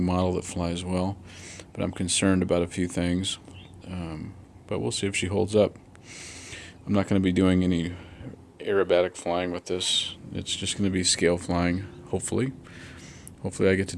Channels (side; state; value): both; identical; correlation 1.00